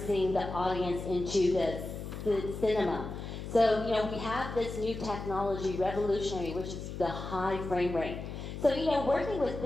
the audience into the cinema. So, we have this new technology, revolutionary, which is the high frame rate. So, working with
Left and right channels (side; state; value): left; noise; hum, 8 dB below the sound